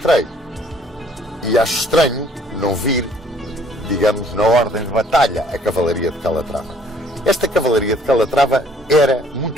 E acho estranho não vir, digamos, na ordem de batalha, a cavalaria de Calatrava. Esta cavalaria de Calatrava era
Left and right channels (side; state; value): both; normal; correlation 0.60